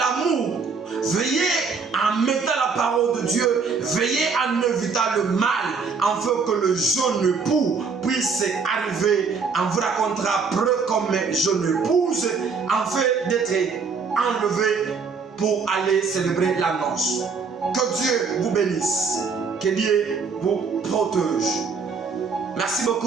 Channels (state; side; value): quieter; left; 5.2 dB